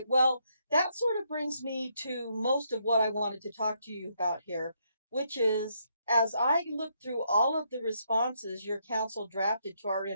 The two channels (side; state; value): both; inverted; correlation -0.76